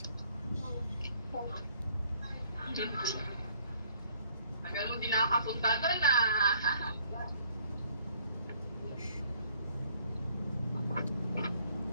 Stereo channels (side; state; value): both; inverted; correlation -0.60